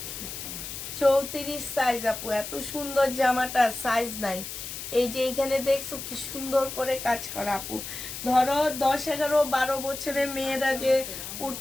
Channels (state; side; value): noise; left; hiss, 8 dB below the sound